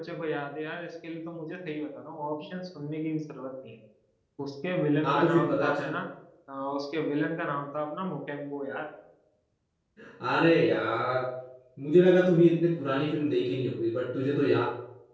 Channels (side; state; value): both; identical; correlation 1.00